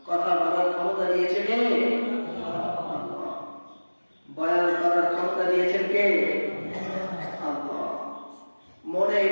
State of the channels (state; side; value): inverted; both; correlation -1.00